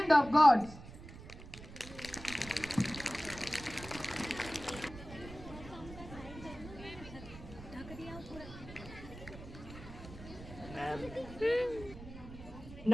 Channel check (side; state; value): right; noise; rumble, 14 dB below the sound